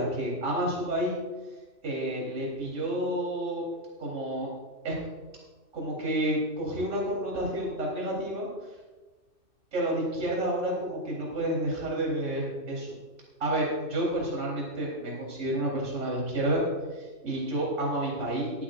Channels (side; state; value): left; late; 2.6 ms